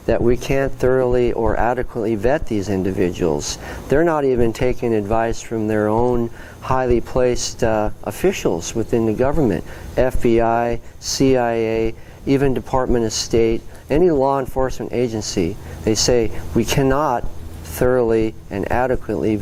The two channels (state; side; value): identical; both; correlation 1.00